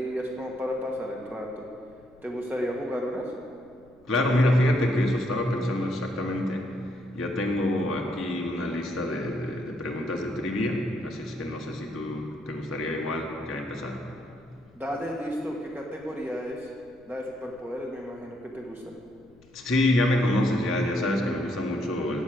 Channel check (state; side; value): noise; left; rumble, 28 dB below the sound